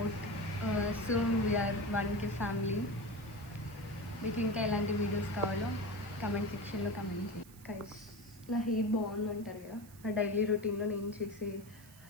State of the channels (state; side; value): noise; right; hiss, 22 dB below the sound